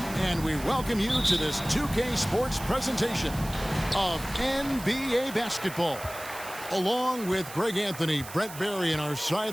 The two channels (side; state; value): right; noise; hiss, 14 dB below the sound